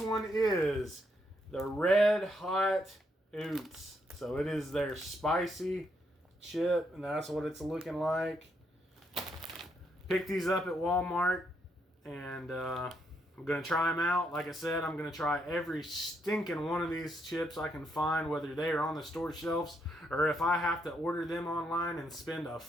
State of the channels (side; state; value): both; normal; correlation 0.76